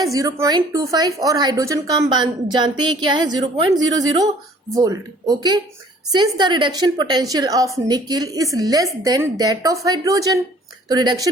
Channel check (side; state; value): both; normal; correlation 0.55